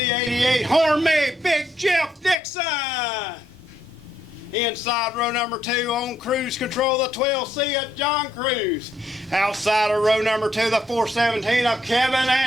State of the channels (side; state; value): both; normal; correlation 0.74